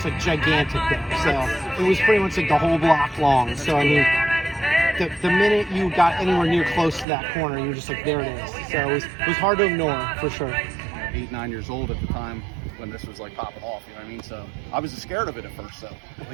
like gigantic there. So it was pretty much like the whole block long. So I mean, the minute you got anywhere near close to that corner, you were just like, there it is. So it was hard to ignore for sure. 8, 9 years old at the time when this was like popping off, you know what I mean? So I was scared of it at first, so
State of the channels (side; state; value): left; drops out; at 7.1 s